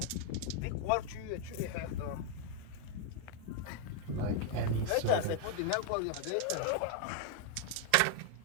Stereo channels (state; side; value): different; both; correlation 0.00